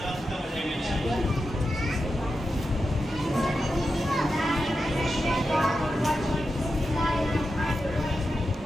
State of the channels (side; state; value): both; normal; correlation 0.89